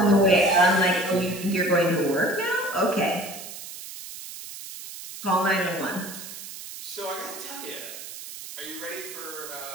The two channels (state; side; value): noise; right; hiss, 12 dB below the sound